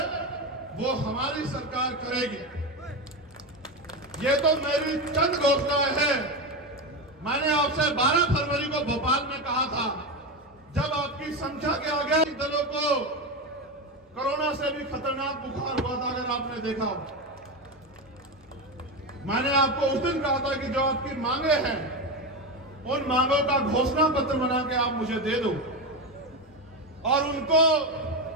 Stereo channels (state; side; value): normal; both; correlation 0.16